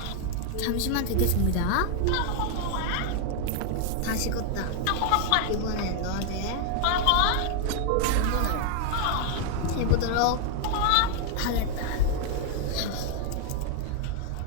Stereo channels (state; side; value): different; both; correlation 0.00